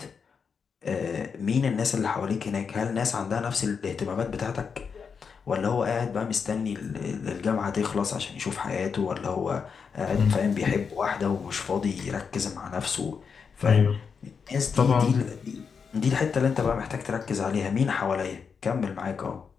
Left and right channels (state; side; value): quieter; right; 6.0 dB